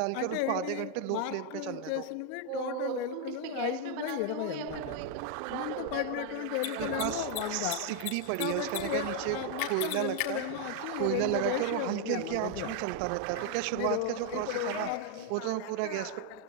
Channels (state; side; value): different; both; correlation 0.00